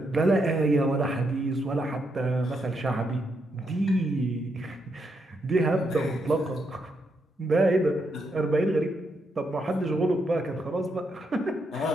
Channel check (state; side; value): normal; both; correlation 0.80